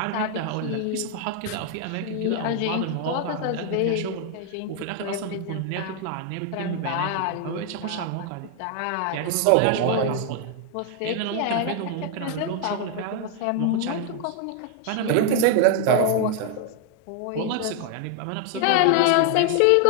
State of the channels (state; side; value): different; both; correlation 0.00